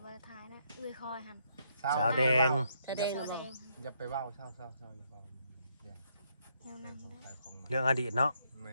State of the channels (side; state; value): both; inverted; correlation -0.73